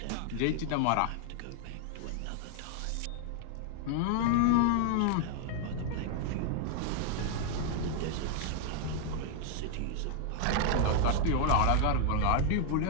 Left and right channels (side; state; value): both; different; correlation 0.00